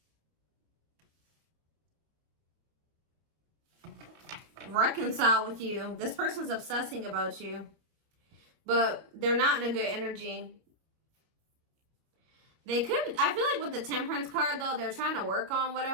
reconcile with you. This person's obsessing about you, but they're not in a good energy. I feel like with the Temperance card, though, they're trying to work on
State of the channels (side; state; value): left; late; 31 ms